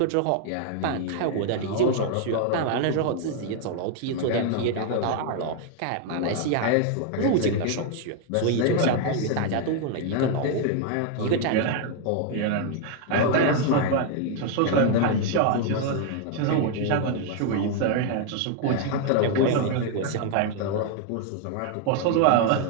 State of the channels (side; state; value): both; different; correlation 0.00